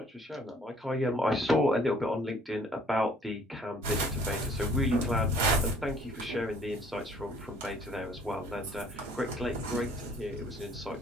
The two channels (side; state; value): both; normal; correlation 0.58